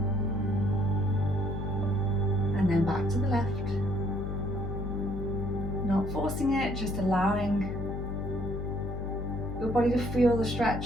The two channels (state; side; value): noise; left; hum, 5 dB below the sound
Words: and then back to the left. Not forcing it, just allowing your body to feel the